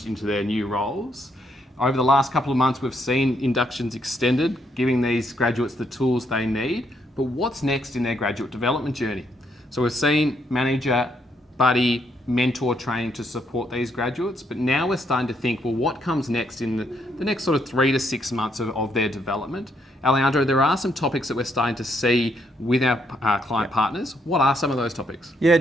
into their new roles. Over the last couple of months, we've seen inductions extended, giving these graduates the tools they need. But what's next in their graduate development journey? So we've seen manager, buddy, mentor training to support these graduates, but now we're starting to think, well, what comes next in the next sort of 3 to 6 months of their development? Alejandro, there are some topics that we're starting to see with our client partners. What are some of those topics? Yeah,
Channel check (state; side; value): normal; both; correlation 0.74